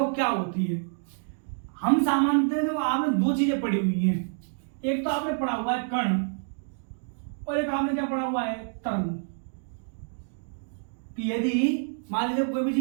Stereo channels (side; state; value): left; silent; digital silence